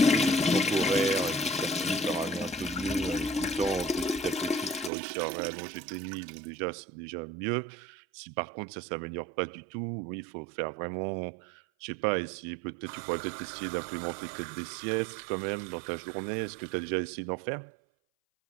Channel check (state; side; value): drops out; left; at 4.9 s